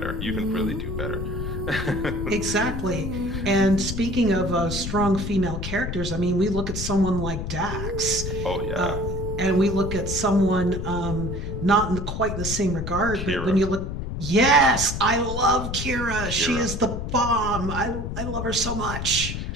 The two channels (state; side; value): noise; left; rumble, 5 dB below the sound